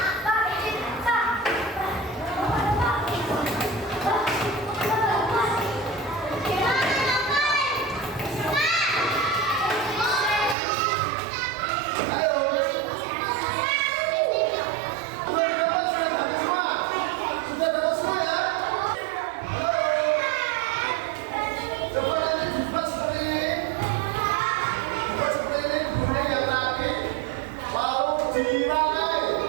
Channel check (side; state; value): left; drops out; at 10.6 s